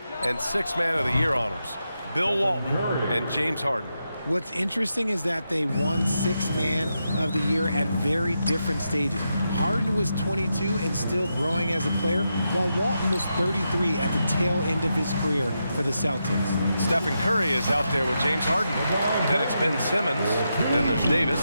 and 6th Man of the Year honors. Bill Walton and James Harden. What's interesting is that they won 6th Man of the Year at very different stages. Harden was 22 and still growing as a player, while Walton was 33 at the tail end of his career for the Celtics. Stephen Curry is out there with James Harden. Then it's Ben Simmons. Then there's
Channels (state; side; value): inverted; both; correlation -0.86